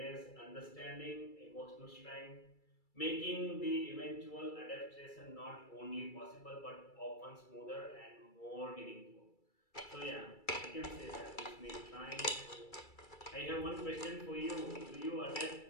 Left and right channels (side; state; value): right; late; 2.3 ms